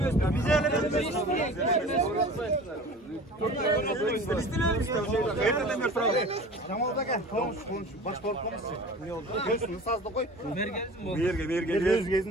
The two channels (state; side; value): normal; both; correlation 0.39